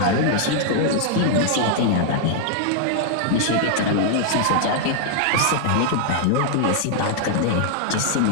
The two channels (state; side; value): different; both; correlation -0.01